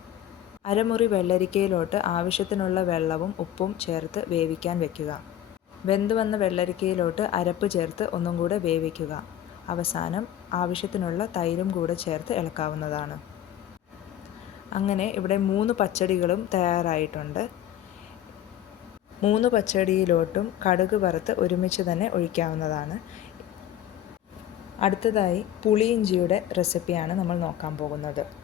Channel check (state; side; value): quieter; right; 11.4 dB